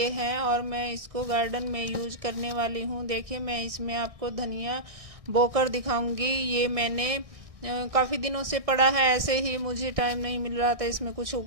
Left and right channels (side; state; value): left; late; 1.6 ms